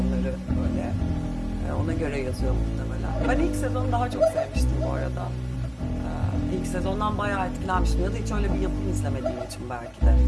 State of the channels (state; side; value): identical; both; correlation 1.00